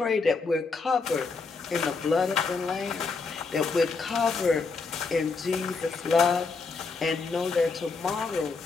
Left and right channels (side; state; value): right; quieter; 4.4 dB